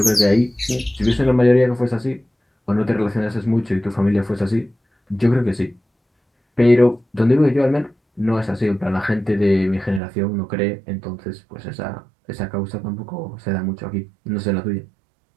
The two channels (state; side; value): drops out; left; at 10.0 s